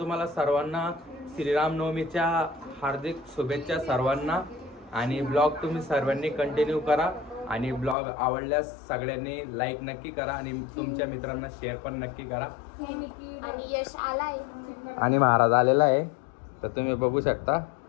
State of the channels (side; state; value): right; drops out; at 8.0 s